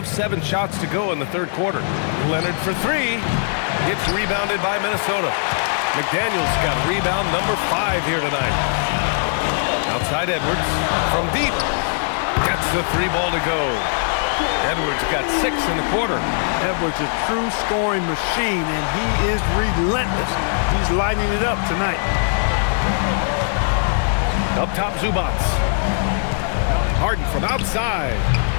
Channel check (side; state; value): right; silent; digital silence